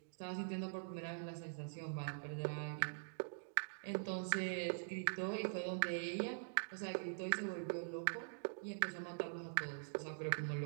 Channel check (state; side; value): silent; left; digital silence